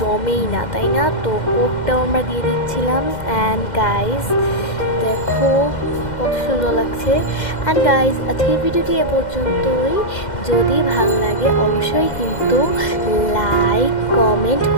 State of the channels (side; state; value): right; late; 2.1 ms